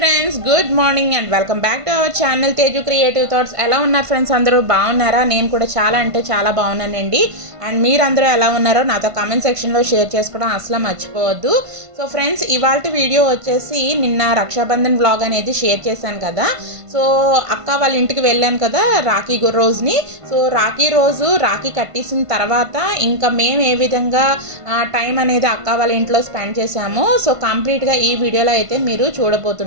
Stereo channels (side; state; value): left; late; 1.5 ms